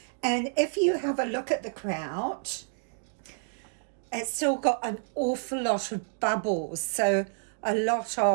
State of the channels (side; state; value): left; silent; digital silence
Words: And if you have a look at the kraut, it's still got an awful lot of bubbles, so a lot